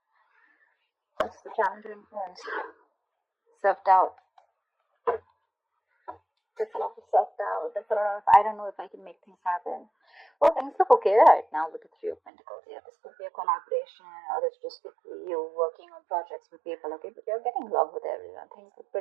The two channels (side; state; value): left; drops out; at 12.2 s